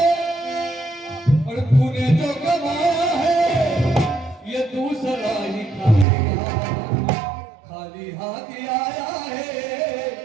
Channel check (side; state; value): left; drops out; at 6.1 s